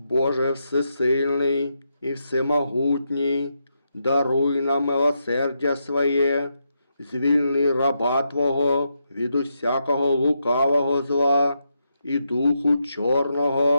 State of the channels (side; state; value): both; inverted; correlation -0.83